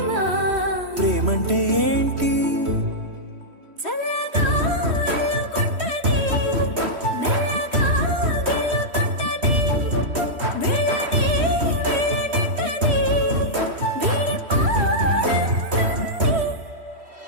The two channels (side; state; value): left; late; 3.1 ms